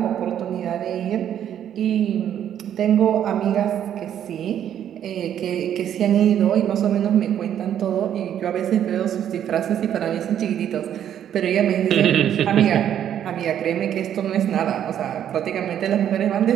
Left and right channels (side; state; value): left; quieter; 10.0 dB